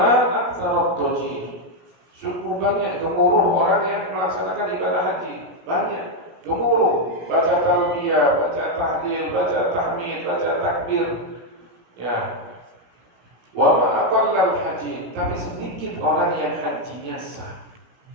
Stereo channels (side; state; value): left; late; 16 ms